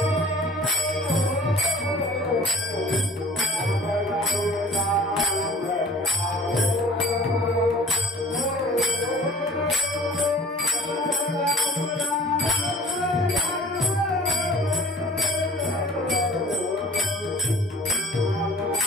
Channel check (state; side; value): normal; both; correlation 0.50